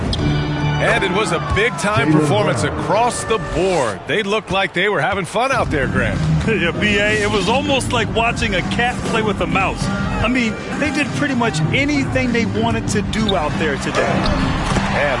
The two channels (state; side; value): identical; both; correlation 1.00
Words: And it was a big-time performance across the board. They looked like they were having fun out there, Grant. Yeah, B.A., it was almost like watching a cat play with a mouse. I mean, they did pretty much anything they wanted to do out there today. And